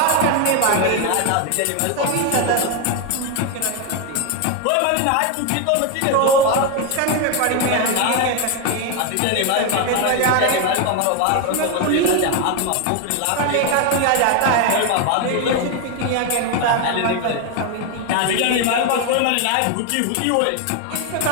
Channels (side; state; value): both; different; correlation 0.01